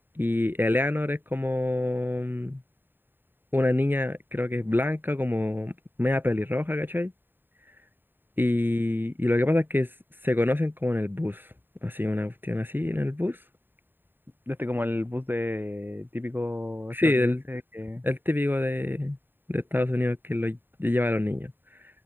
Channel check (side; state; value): left; late; 0.094 ms